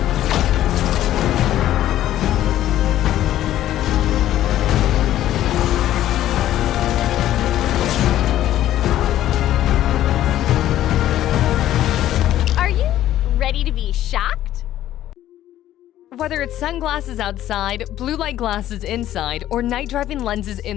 Ready to be shocked? Whether it's sunglasses outside, blue light glasses inside, or night driving lenses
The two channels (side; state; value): right; quieter; 12.9 dB